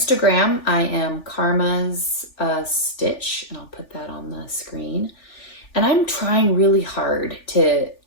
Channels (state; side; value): late; right; 3.4 ms